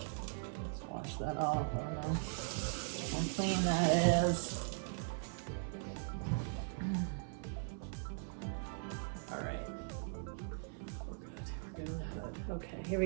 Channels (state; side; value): silent; left; 51 dB below the other